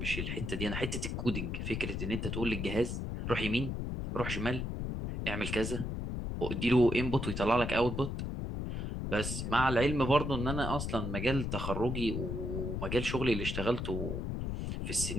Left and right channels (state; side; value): noise; left; rumble, 3 dB below the sound